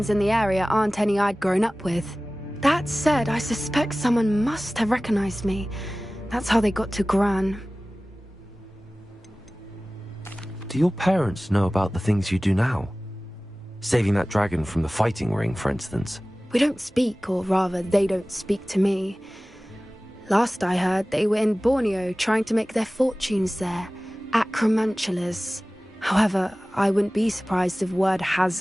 in the area aren't any I'd grown up with. That said, I suspect someone must have recognized me. That's how they got to Gran. Do your parents know about the things you do now? Saving that dragon from the fighting ring, for instance. We don't speak, or rather, they don't speak to me. Last I heard, they were in Borneo trying to make their fortunes there. Acromantulas. However, I wouldn't be surprised if word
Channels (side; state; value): both; normal; correlation 0.97